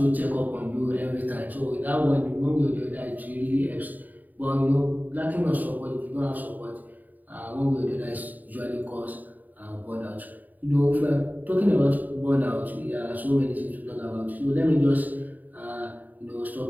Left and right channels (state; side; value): late; left; 0.084 ms